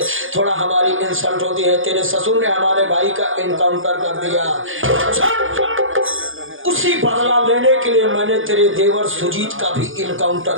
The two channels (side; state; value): left; late; 0.58 ms